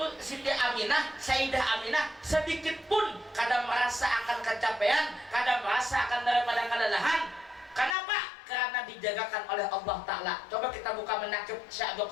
Siti Aminah, Sayyidah Aminah sedikit pun kadang merasa akan kecapean, kadang merasa akan daripada kelelahan. Kenapa? Karena dijagakan oleh Allah Ta'ala. Coba kita buka menakib Syekh Abdul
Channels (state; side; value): drops out; right; at 8.0 s